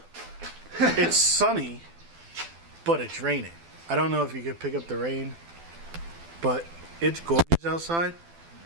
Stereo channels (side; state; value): left; late; 12 ms